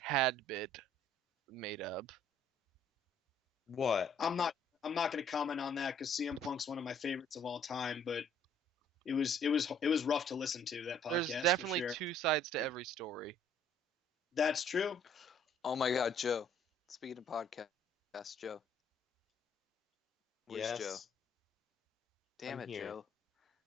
bit made up. What? I'm not going to comment on that because CM Punk's one of my favorites of all time, but it was rough to listen to, that podcast. There's definitely for sure. two sides to every story. That's true. Oh my God, Joe. Speaking of podcasts, Joe. Where's Joe? Damn I'm it, here. Joe.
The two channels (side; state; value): both; normal; correlation 0.61